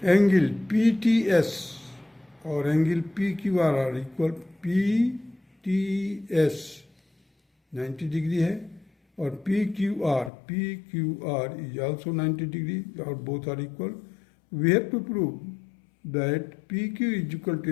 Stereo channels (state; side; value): drops out; right; at 10.3 s